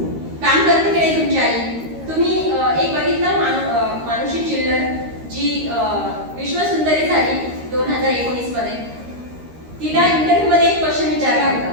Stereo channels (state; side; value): late; left; 13 ms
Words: काम करते की नाही तुमची आई? तुम्ही एक बघितलं मानुषी चिल्लर, जी विश्वसुंदरी झाली 2019 मध्ये. तिला इंटरव्ह्यू मध्ये एक क्वेश्चन विचारला